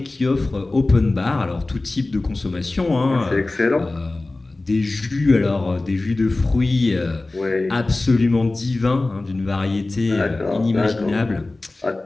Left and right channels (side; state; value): right; quieter; 3.1 dB